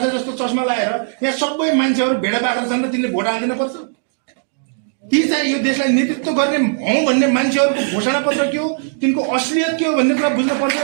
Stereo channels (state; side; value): silent; left; digital silence